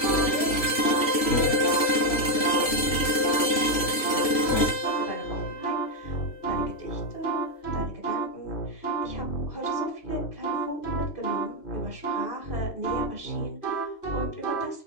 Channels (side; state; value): right; late; 3.1 ms